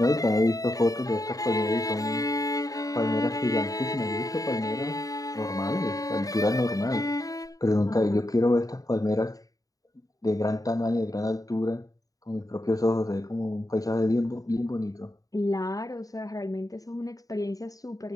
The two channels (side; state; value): right; late; 0.17 ms